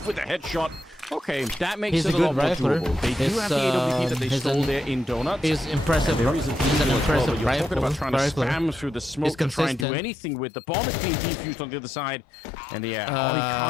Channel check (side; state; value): right; drops out; at 9.9 s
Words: with a headshot. Okay, that makes He's it a a lot good more rifler. doable. They do have the AWP that they stole there in Donuts. He's impressive. There is He's an impressive You're talking about trying to rifler. spam through the smoke to try and do anything with the bomb is being defused on the other side. And yeah, he